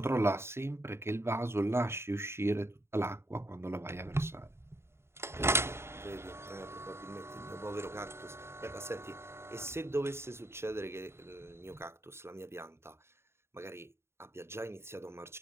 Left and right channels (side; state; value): left; late; 0.12 ms